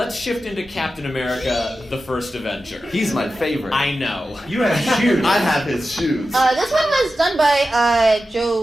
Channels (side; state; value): both; normal; correlation 0.93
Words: shift into Captain America, the First Avenger. He's my favorite. I know. You have shoes. I have his shoes. This one was done by